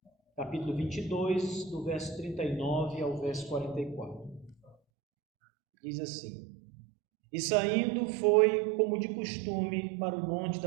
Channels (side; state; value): left; drops out; at 4.8 s